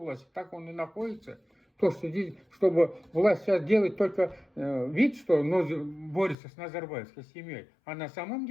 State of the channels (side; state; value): right; drops out; at 6.4 s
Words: так он и находится. То, что здесь, чтобы власть сейчас делает только вид, что борется с назарбаевской семьей. А на самом